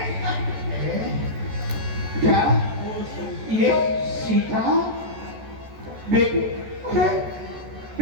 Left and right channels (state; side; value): late; left; 14 ms